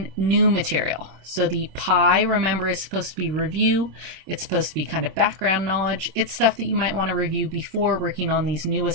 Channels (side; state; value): left; late; 26 ms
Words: new material. So the PI, remember, is supposed to be review. It's supposed to be kind of background knowledge. It's stuff that you might want to review before working on these new